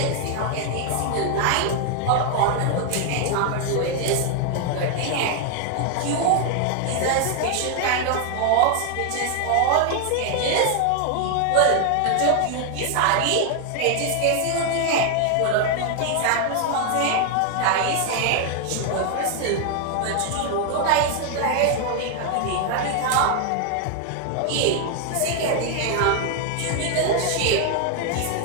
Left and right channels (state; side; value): different; both; correlation 0.00